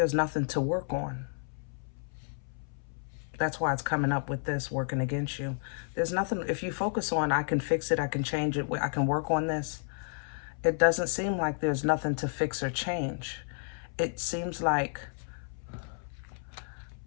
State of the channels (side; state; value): right; silent; 57 dB below the other